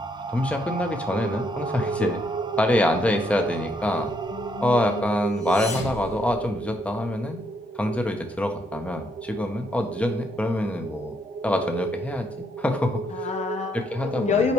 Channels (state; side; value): normal; both; correlation 0.73